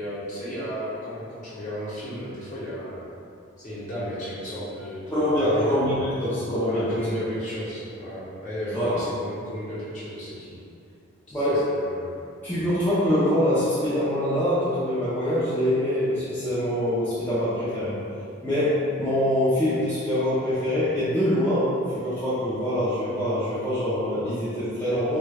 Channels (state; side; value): normal; both; correlation 0.43